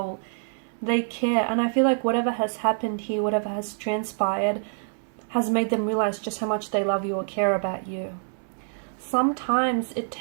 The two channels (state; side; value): silent; left; 61 dB below the other